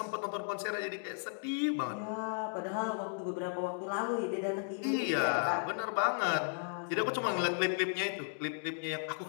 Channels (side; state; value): right; silent; 54 dB below the other